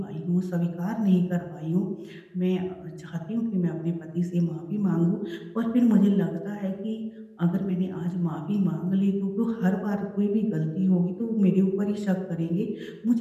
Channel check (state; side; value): identical; both; correlation 1.00